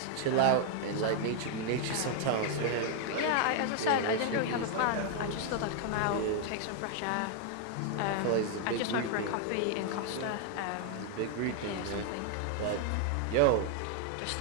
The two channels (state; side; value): different; both; correlation 0.00